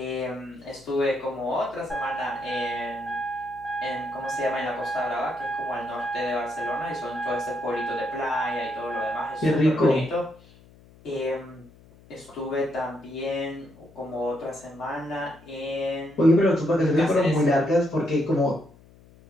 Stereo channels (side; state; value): left; noise; hum, 25 dB below the sound